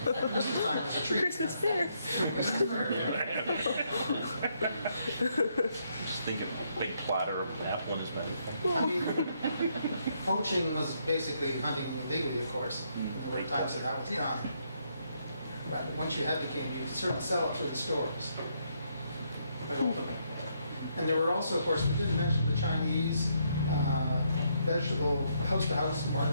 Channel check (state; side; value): inverted; both; correlation -0.75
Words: Christmas time as a treat. Christmas fair. Just thinking, big platter of apple in his mouth. I mean, poaching was basically hunting illegally, of course. There were times that was done. But once you had the game, you could certainly sell it through the stores. But open. And there were also, of course, we didn't mention the Chinese vegetable house-to-house